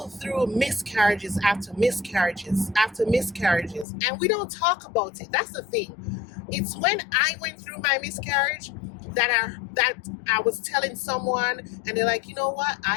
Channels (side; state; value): right; drops out; at 3.9 s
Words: through miscarriages after miscarriages after miscarriages. And we don't talk about it. That's the thing. It's when I went through my miscarriage that I was telling someone, and they're like, you know what?